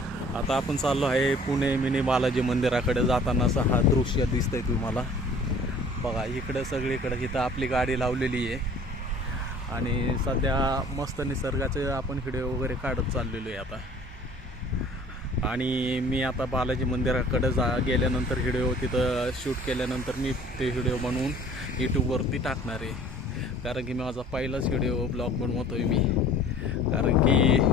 आता आपण चाललो आहे पुणे मिनी बालाजी मंदिराकडे. जाताना असं हा दृश्य दिसतंय तुम्हाला. बघा इकडं सगळीकडे इथं आपली गाडी लावलेली आहे आणि सध्या मस्त निसर्गाचे आपण व्हिडिओ वगैरे काढत चाललेलो आहे आता. आणि मी आता बालाजी मंदिराकडे गेल्यानंतर व्हिडिओ तिथं शूट केल्यानंतर मी ते व्हिडिओ बनवून यूट्यूबवरती टाकणार आहे. कारण की माझा पहिलाच व्हिडिओ ब्लॉग बनवतो आहे मी. कारण की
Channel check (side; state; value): both; normal; correlation 0.50